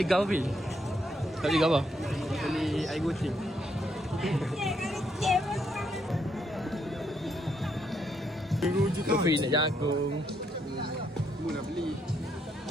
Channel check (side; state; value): both; normal; correlation 0.75